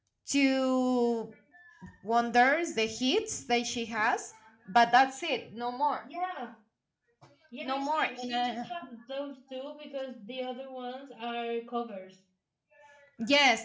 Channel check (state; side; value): identical; both; correlation 1.00